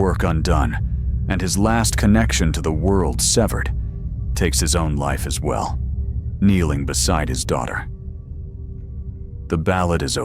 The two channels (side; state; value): both; identical; correlation 1.00